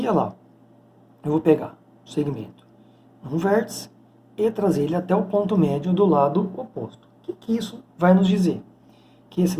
olha lá, eu vou pegar o segmento num vértice e trazer ele até o ponto médio do lado oposto. O que isso vai nos dizer? Que esse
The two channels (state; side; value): identical; both; correlation 1.00